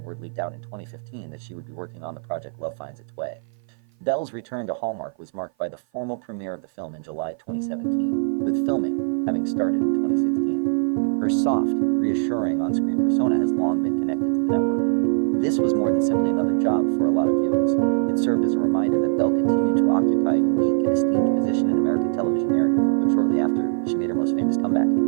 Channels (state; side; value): silent; left; 55 dB below the other